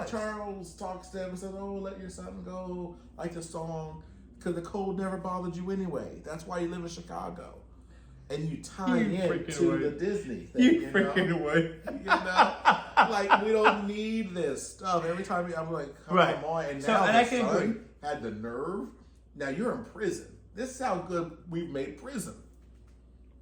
Charles talks to him and says, oh, let your son go. Like the song. Because the cold never bothered you anyway. That's why you live in Chicago. And you tie in to the Disney thing. You freaking away. Like, we don't need this stuff. Every time I'm like, come on. And now the son had the nerve. Now you're in prison. This is how good we've made prison.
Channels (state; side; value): identical; both; correlation 1.00